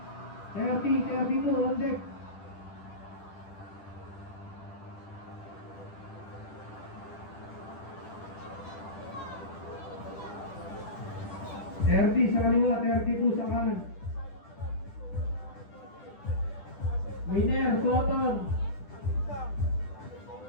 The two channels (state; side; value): late; right; 11 ms